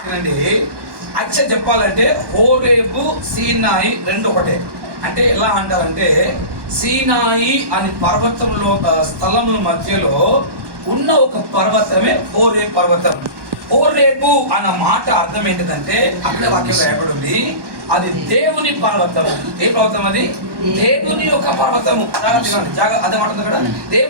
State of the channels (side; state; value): left; late; 1.2 ms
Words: యాక్చువల్ చెప్పాలంటే హోరేబు, సీనాయి రెండు ఒకటే. అంటే ఎలా అంటారంటే, సీనాయి అని పర్వతంలో స్థలముల మధ్యలో ఉన్న ఒక పర్వతమే హోరేబు పర్వతం. హోరేబు అన్న మాట అర్థం ఏంటిదంటే, అక్కడ వాక్యం రాయబడి ఉంది, అది దేవుని పర్వతం. ఏ పర్వతం అది? దేవుని యొక్క పర్వతము. అదే మాట కదా,